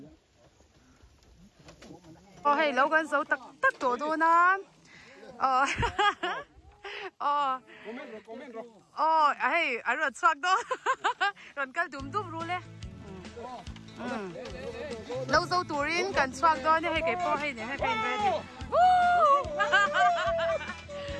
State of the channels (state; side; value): identical; both; correlation 1.00